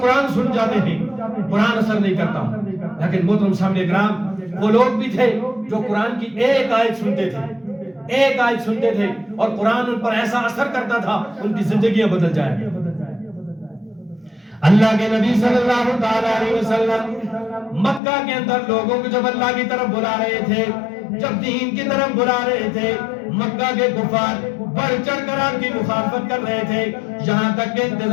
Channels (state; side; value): drops out; right; at 18.0 s